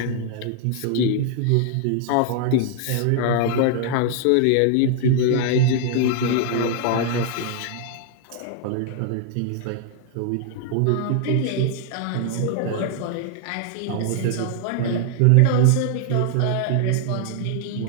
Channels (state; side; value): different; both; correlation 0.00